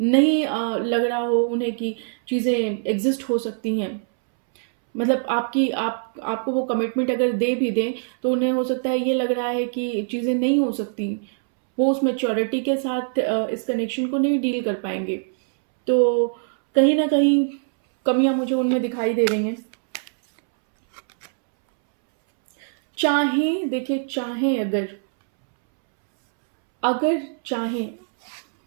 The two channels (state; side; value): silent; left; 64 dB below the other